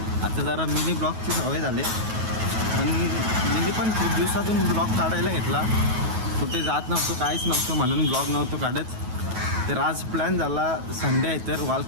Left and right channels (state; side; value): late; left; 9.3 ms